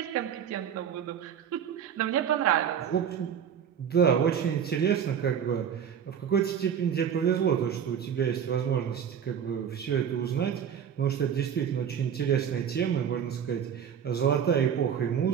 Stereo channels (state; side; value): quieter; left; 8.3 dB